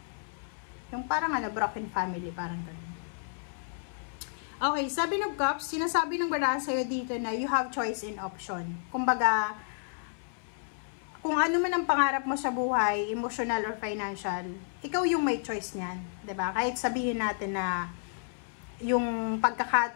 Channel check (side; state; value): right; silent; 57 dB below the other